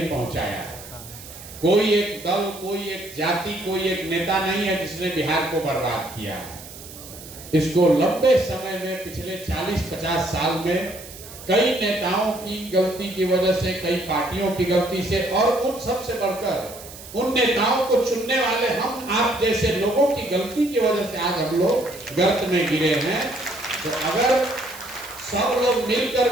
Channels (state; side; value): noise; right; hiss, 16 dB below the sound